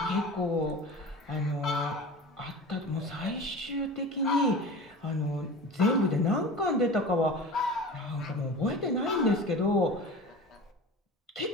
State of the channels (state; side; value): normal; both; correlation 0.35